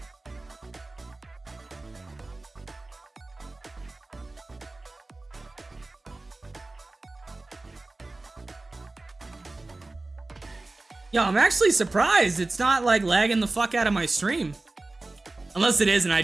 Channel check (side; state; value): left; quieter; 3.1 dB